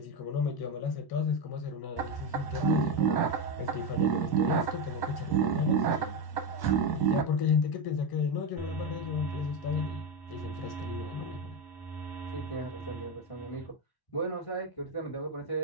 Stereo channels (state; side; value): late; right; 1.1 ms